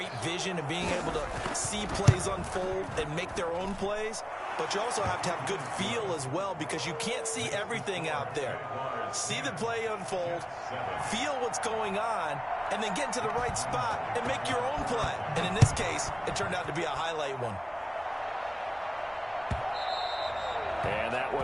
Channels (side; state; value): both; identical; correlation 1.00